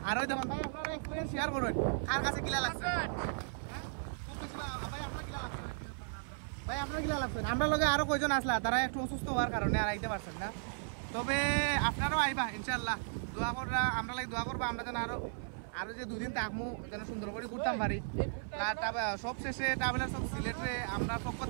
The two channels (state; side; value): silent; left; 54 dB below the other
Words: আর ওই দেখুন ভাই আপনারা এক্সপিরিয়েন্স শেয়ার করুন কার কাছে কিলা লাগছে ভাই আপনার কিলা লাগছে আমরা লগে আরো কয়জন আসলা তারা একটু অসুস্থ হওয়ার কারণে আর আইতে পারছেন না তবে আপনারাও আইবা ইনশাল্লাহ দোয়া করবা আমরা লাগে দোয়া করবা আমরা যেন আরো যে দুদিন থাকমু যেন সুন্দর করে ঘুরতাম পারি সব শেষে ট্রাভেলার সব সিলেটে আমরা পক্ষ